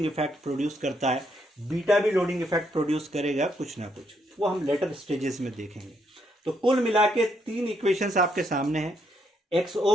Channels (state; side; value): normal; both; correlation 0.75